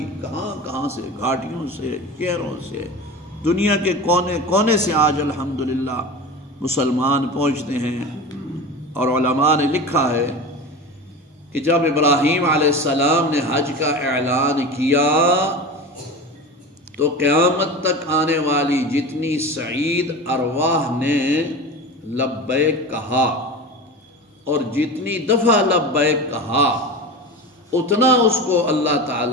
کہاں کہاں سے، گھاٹیوں سے، شہروں سے، دنیا کے کونے کونے سے آج الحمدللہ مسلمان پہنچتے ہیں۔ اور علماء نے لکھا ہے کہ جب ابراہیم علیہ السلام نے حج کا اعلان کیا تو قیامت تک آنے والی جتنی سعید ارواح نے لبیک کہا اور جتنی دفعہ لبیک کہا، اتنا اس کو اللہ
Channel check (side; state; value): both; normal; correlation 0.30